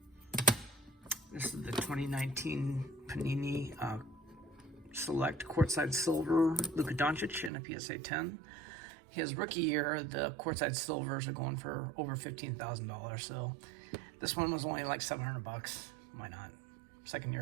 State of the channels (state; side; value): drops out; left; at 7.5 s